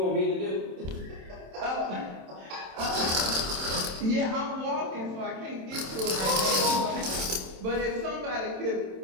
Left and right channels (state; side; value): late; left; 27 ms